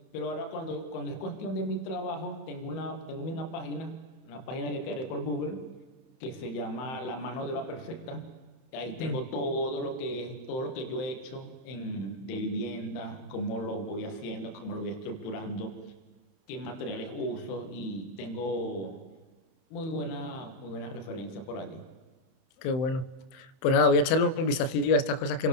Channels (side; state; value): right; late; 31 ms